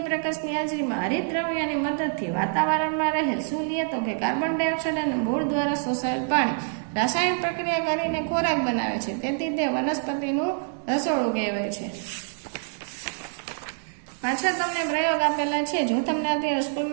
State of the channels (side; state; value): left; silent; digital silence